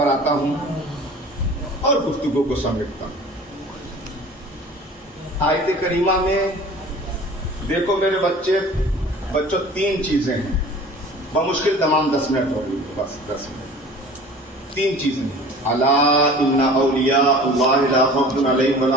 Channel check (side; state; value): both; normal; correlation 0.43